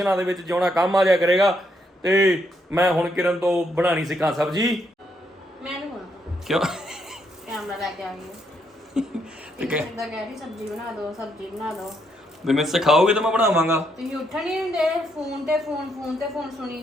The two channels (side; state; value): both; normal; correlation 0.75